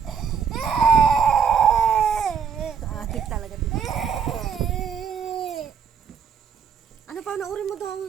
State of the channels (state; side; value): quieter; left; 6.9 dB